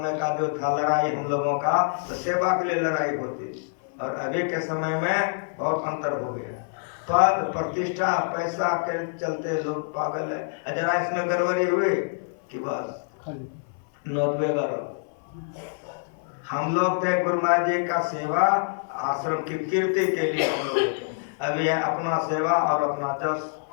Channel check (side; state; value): right; silent; 61 dB below the other